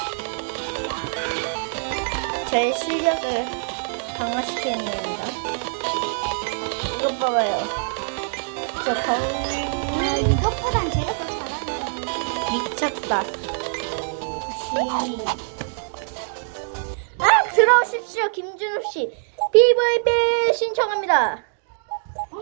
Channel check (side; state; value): left; silent; digital silence